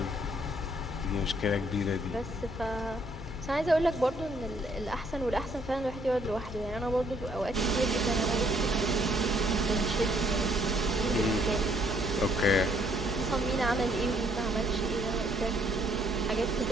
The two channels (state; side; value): normal; both; correlation 0.66